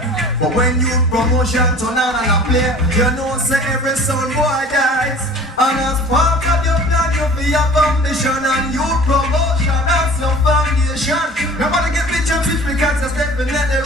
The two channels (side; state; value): both; normal; correlation 0.45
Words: But when you promotion turn on and a play, you know say every soul boy dies. And as part of your plan, you feel your foundation and you promotion as your foundation. Nobody get picture switch because you're definitely